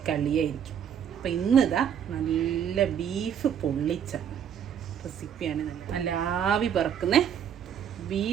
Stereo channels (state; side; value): quieter; left; 8.7 dB